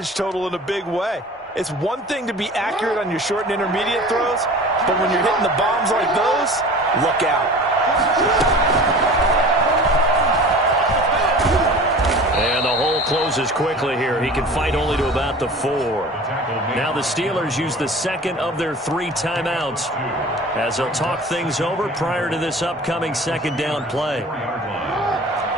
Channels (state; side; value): normal; both; correlation 0.40